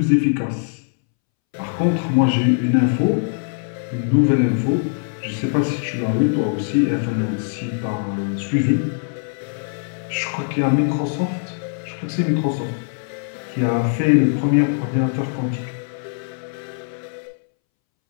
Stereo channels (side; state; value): right; silent; 65 dB below the other